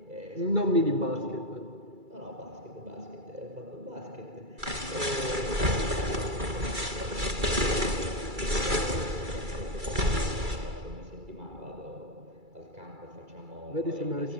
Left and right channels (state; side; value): late; left; 2.3 ms